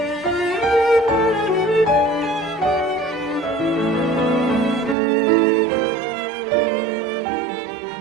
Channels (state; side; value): drops out; left; at 5.0 s